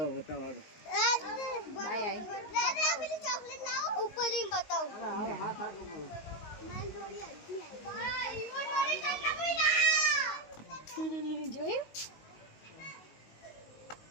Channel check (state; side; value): late; right; 19 ms